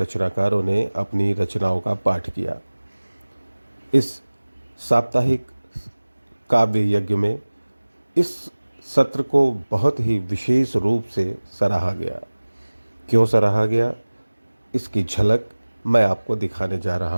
ने अपनी रचनाओं का पाठ किया। इस साप्ताहिक काव्य यज्ञ में इस सत्र को बहुत ही विशेष रूप से सराहा गया। क्यों सराहा गया, इसकी झलक मैं आपको दिखाने जा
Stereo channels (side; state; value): both; inverted; correlation -1.00